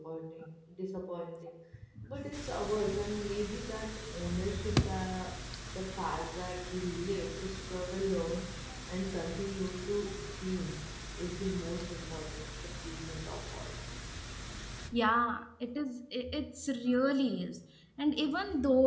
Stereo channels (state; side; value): identical; both; correlation 1.00